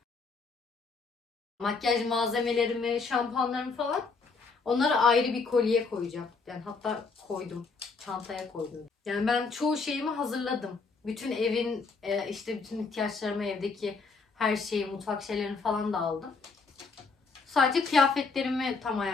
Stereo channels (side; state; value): right; quieter; 4.5 dB